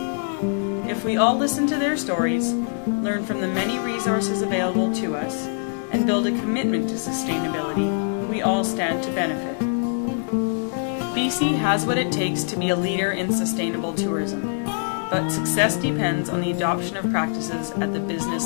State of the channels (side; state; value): right; silent; 63 dB below the other